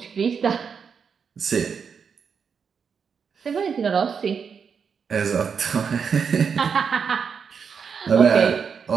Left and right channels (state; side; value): quieter; left; 6.4 dB